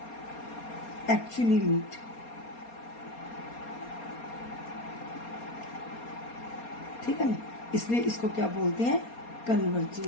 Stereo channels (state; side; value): late; right; 4.3 ms